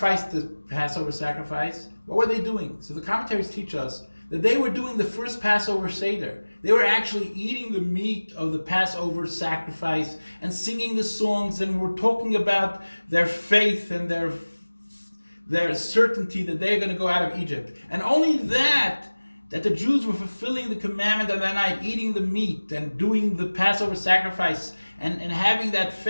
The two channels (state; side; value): inverted; both; correlation -1.00